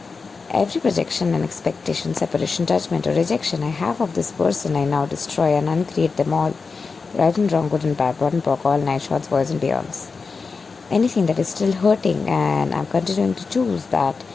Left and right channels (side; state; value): right; quieter; 4.7 dB